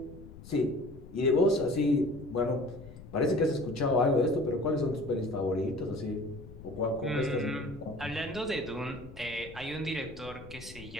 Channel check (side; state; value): left; noise; rumble, 16 dB below the sound